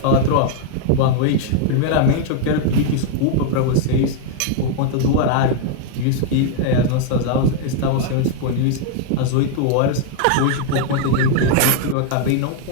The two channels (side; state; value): both; different; correlation 0.00